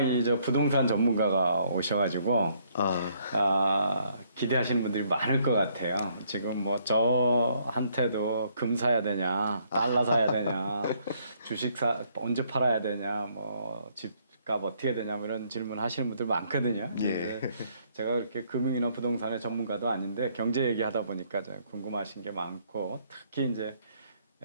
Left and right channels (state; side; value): inverted; both; correlation -0.68